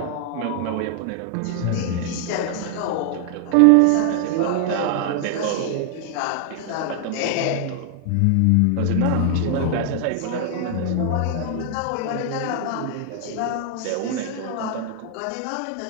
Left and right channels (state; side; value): different; both; correlation 0.00